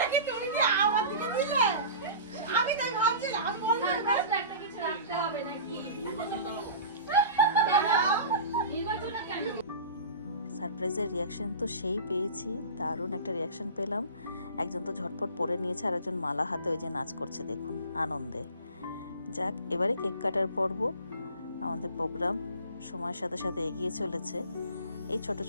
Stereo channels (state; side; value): inverted; both; correlation -0.37